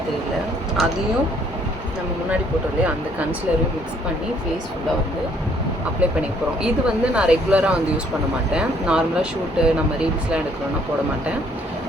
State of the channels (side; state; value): both; normal; correlation 0.64